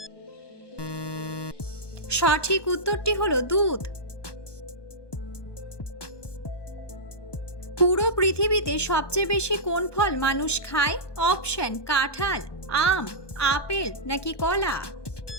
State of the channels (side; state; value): right; late; 1.2 ms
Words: সঠিক উত্তরটি হলো দুধ। পুরো পৃথিবীতে সবচেয়ে বেশি কোন ফল মানুষ খায়? অপশন: কাঁঠাল, আম, আপেল নাকি কলা?